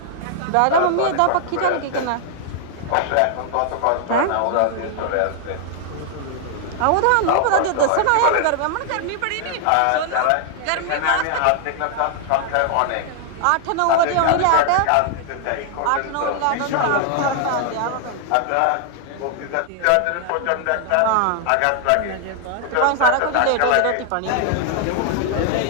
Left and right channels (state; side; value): different; both; correlation 0.00